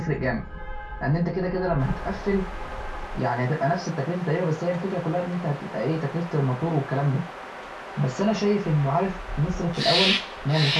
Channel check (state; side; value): identical; both; correlation 1.00